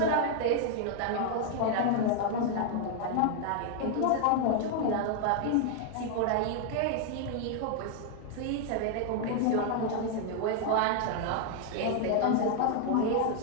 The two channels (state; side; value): different; both; correlation 0.00